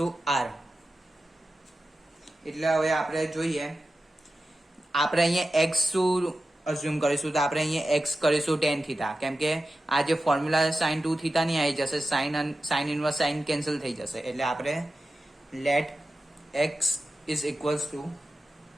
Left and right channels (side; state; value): both; normal; correlation 0.93